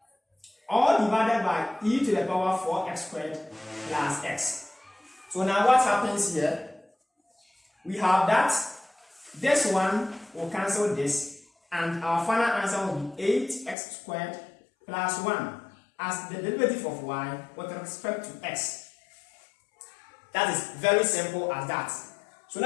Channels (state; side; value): drops out; right; at 13.8 s